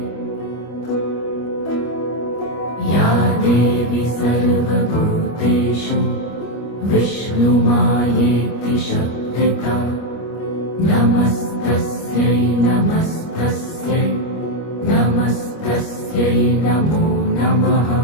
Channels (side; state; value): right; late; 25 ms